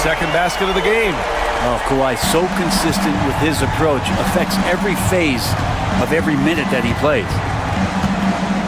basket of the game. Oh, Kawhi so consistent with his approach. Affects every phase of every minute that he plays.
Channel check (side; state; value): both; identical; correlation 1.00